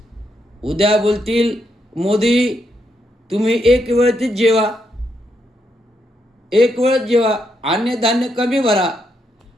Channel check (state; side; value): normal; both; correlation 0.79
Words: उद्या बोलतील मोदी तुम्ही एक वेळेच जेवा, 1 वेळच जेवा, अन्नधान्य कमी भरा,